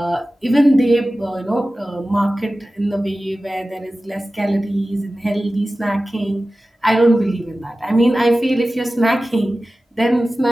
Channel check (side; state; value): both; normal; correlation 0.96